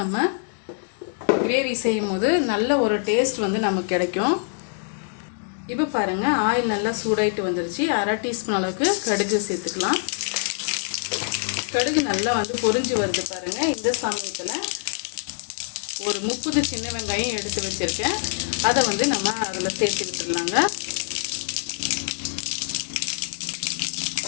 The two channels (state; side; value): silent; right; digital silence